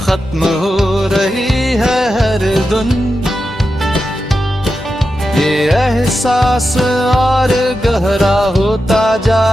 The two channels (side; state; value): both; normal; correlation 0.90